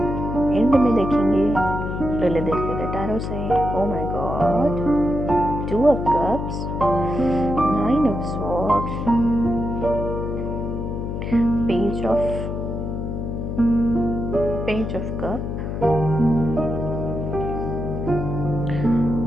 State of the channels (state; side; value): noise; left; hum, 4 dB below the sound